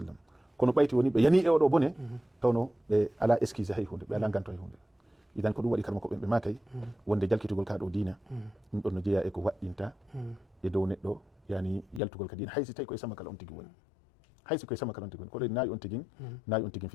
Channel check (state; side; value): drops out; right; at 12.0 s